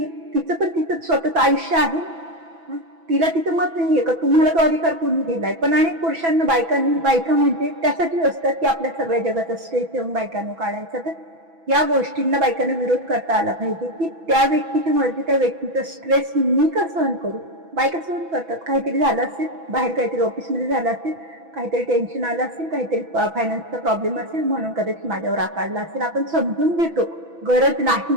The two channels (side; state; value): left; late; 6.1 ms